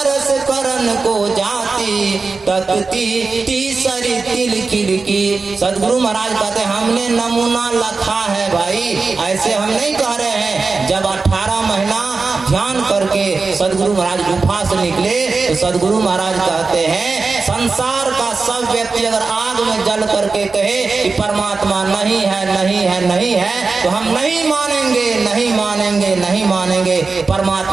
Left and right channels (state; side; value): quieter; left; 4.2 dB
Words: करन को जाती तकती तीसरी तिल खिड़की। सदगुरु महाराज कहते हैं, हमने नमूना लखा है भाई, ऐसे हम नहीं कह रहे हैं। जब 18 महीना ध्यान करके सदगुरु महाराज गुफा से निकले तो सदगुरु महाराज कहते हैं, संसार का सब व्यक्ति अगर आग में जल करके कहे कि परमात्मा नहीं है नहीं है नहीं है, तो हम नहीं मानेंगे नहीं मानेंगे नहीं मानेंगे।